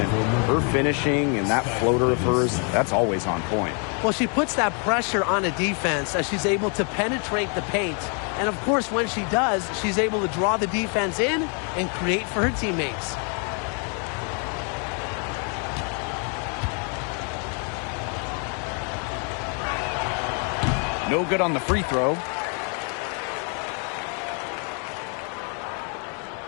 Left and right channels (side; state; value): right; quieter; 39.8 dB